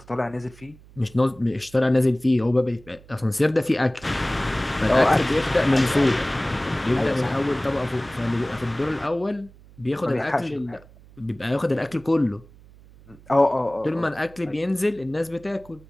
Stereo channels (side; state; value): right; noise; hum, 24 dB below the sound